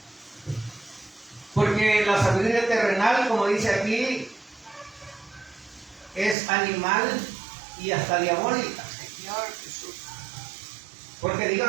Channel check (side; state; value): left; drops out; at 6.4 s